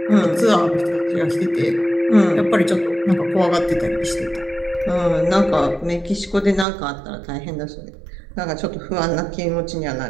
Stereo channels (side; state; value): left; drops out; at 6.7 s